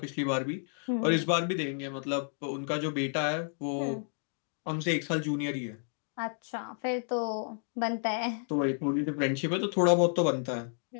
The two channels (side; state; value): right; silent; 57 dB below the other